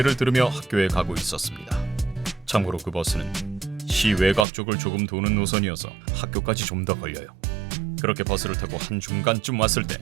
들으며 학교에 가고 있었습니다. 참고로 그 버스는 시 외곽 쪽을 조금 도는 노선이어서 학교까지 좀 더 걸려요. 그렇게 버스를 타고 한 중간쯤 왔을 때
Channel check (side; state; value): left; drops out; at 4.5 s